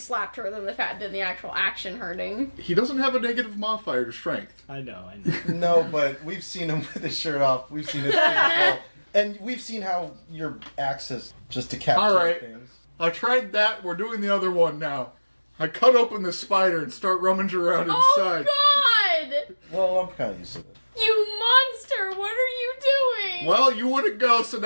her, than the actual action hurting. He doesn't have a negative modifier to strength. I know. No, but we've seen him with his shirt off. We've seen his physical. And we've seen how your axe has just decapitated Alright. things. I tried that, we're doing the other one now. I cut open the spider and start rummaging around Oh inside. God! Well, I'm kind of used to it. You monster! What are you doing? Well, you wouldn't go, so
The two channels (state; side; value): inverted; both; correlation -1.00